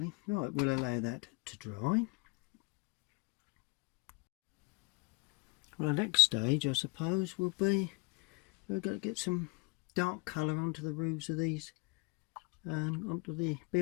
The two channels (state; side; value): quieter; right; 29.8 dB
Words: Right, we'll allow that to dry. Well, the next stage I suppose will be we're going to get some dark colour onto the roofs of these, onto the